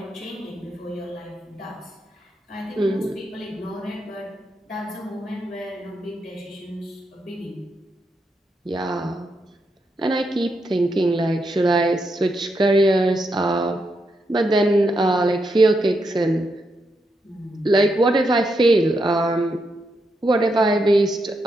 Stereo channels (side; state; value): both; normal; correlation 0.82